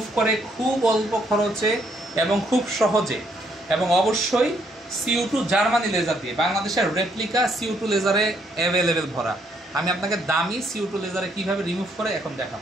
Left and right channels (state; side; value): normal; both; correlation 0.71